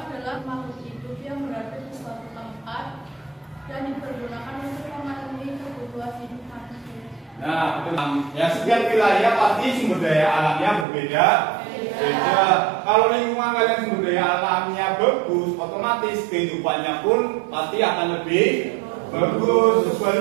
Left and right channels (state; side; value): drops out; left; at 10.9 s